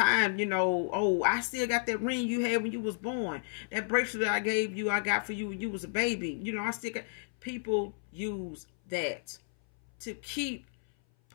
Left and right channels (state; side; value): silent; right; 57 dB below the other